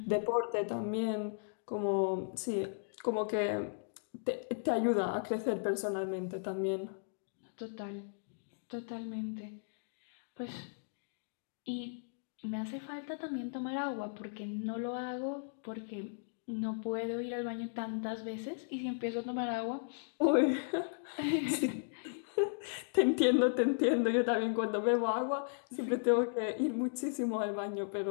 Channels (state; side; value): silent; right; digital silence